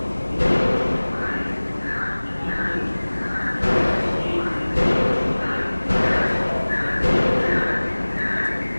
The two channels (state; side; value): inverted; both; correlation -1.00